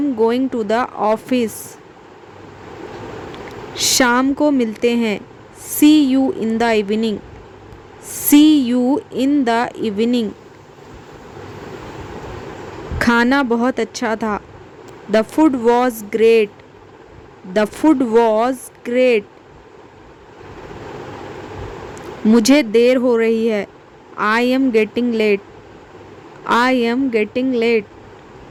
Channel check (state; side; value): identical; both; correlation 1.00